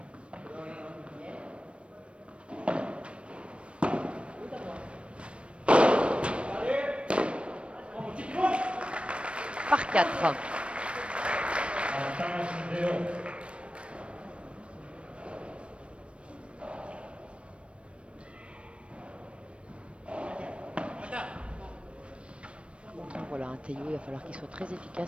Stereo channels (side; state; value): left; late; 0.060 ms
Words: Par 4. Voilà, un Théo, il va falloir qu'il soit très